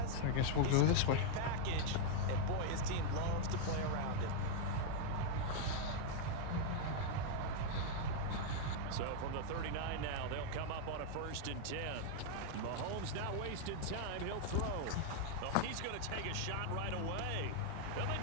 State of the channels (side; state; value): both; different; correlation 0.00